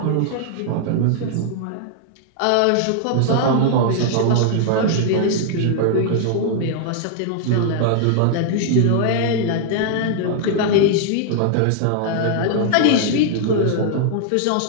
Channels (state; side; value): different; both; correlation 0.00